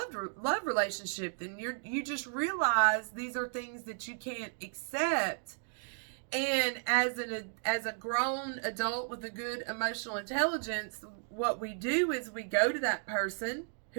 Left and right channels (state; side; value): silent; left; 55 dB below the other